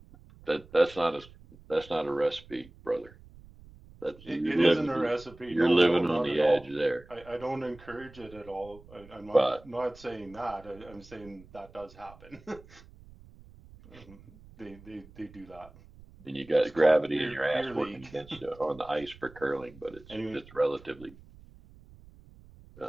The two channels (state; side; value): noise; right; rumble, 22 dB below the sound